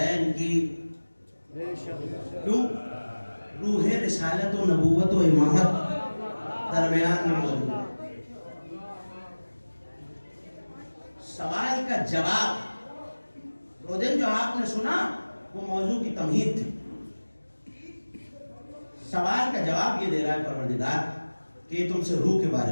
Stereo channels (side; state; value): both; inverted; correlation -1.00